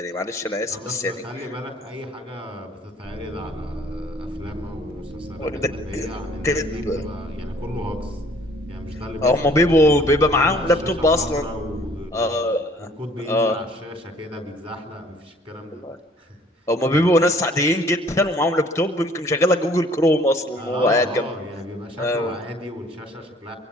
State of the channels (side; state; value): both; normal; correlation 0.57